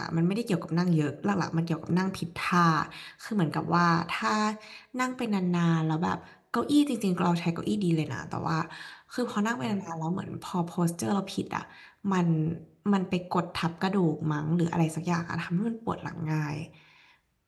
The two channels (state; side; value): identical; both; correlation 1.00